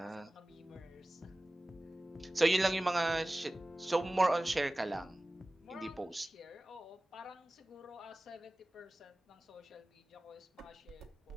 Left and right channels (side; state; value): both; normal; correlation 0.97